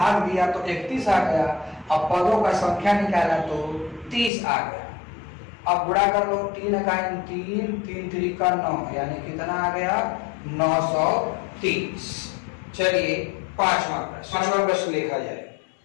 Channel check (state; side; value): drops out; right; at 4.3 s